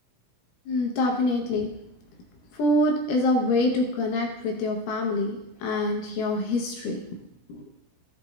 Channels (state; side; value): late; right; 17 ms